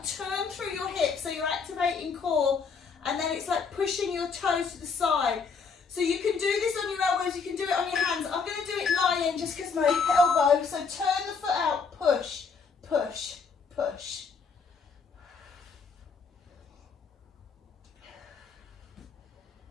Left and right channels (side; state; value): right; quieter; 5.3 dB